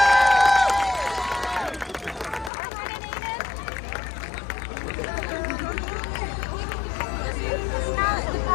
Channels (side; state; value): right; drops out; at 2.5 s